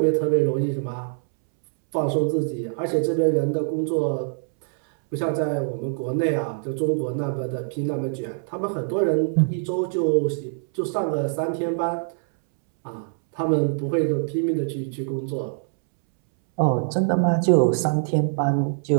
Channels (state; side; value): silent; left; 63 dB below the other